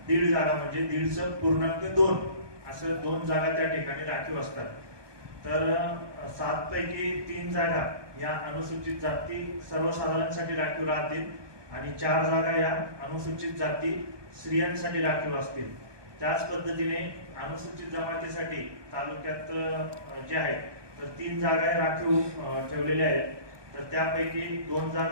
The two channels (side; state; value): left; late; 1.2 ms